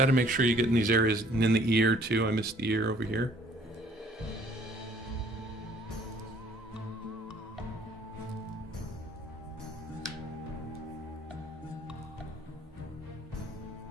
to make sure you get in these areas, and in the ear too. I missed the ear over here.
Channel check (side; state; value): both; normal; correlation 0.57